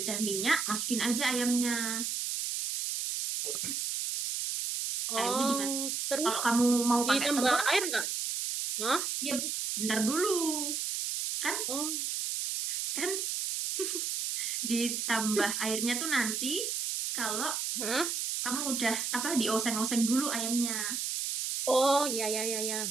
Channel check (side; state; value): right; noise; hiss, 1 dB below the sound